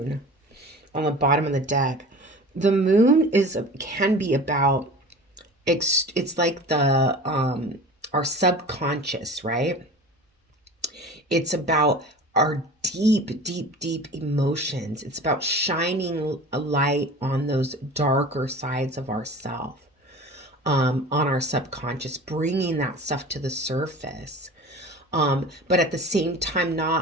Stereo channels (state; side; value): normal; both; correlation 0.38